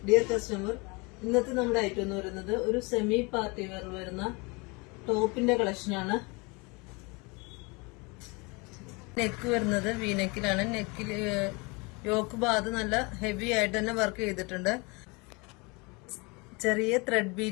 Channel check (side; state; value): right; quieter; 28.1 dB